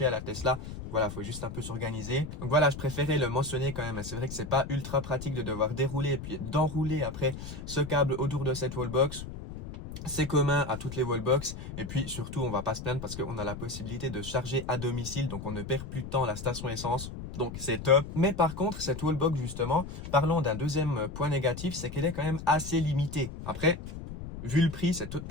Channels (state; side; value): noise; left; rumble, 10 dB below the sound